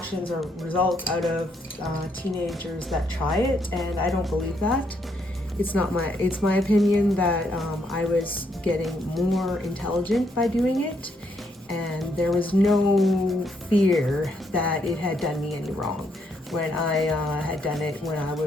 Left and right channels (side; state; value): both; normal; correlation 0.74